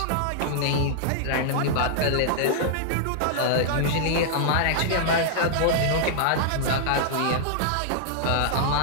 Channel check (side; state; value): both; different; correlation -0.01